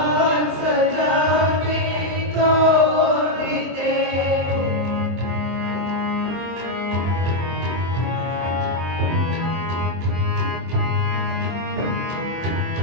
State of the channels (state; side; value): late; left; 23 ms